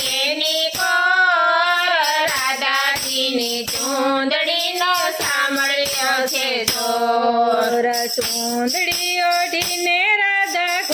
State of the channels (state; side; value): identical; both; correlation 1.00